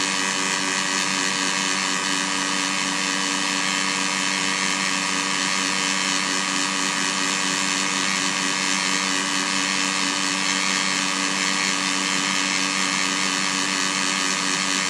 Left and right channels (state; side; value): identical; both; correlation 1.00